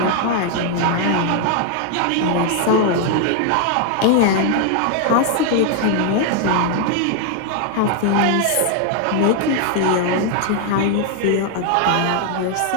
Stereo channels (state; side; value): different; both; correlation 0.00